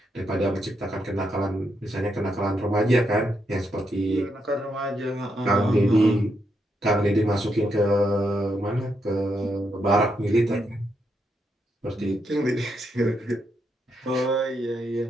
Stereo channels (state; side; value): normal; both; correlation 0.80